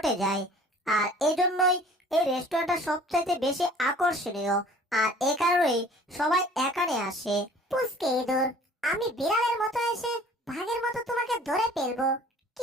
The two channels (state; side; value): normal; both; correlation 0.50